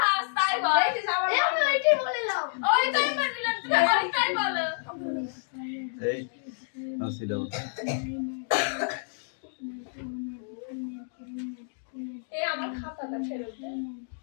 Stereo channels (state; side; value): silent; right; digital silence